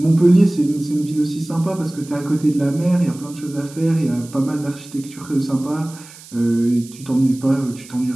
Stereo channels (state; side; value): noise; right; hiss, 20 dB below the sound